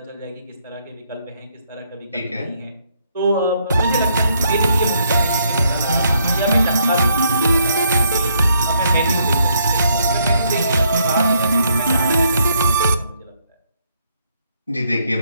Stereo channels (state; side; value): inverted; both; correlation -0.72